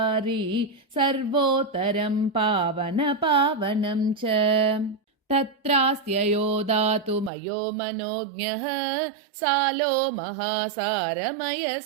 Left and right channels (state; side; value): drops out; left; at 7.3 s